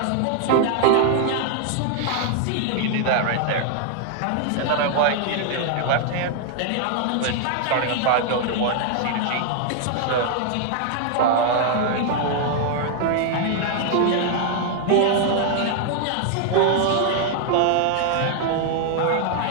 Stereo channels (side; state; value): both; different; correlation 0.00